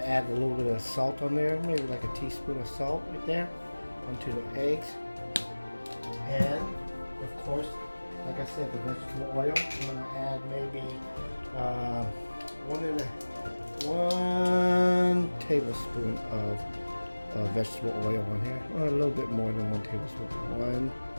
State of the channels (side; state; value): both; inverted; correlation -1.00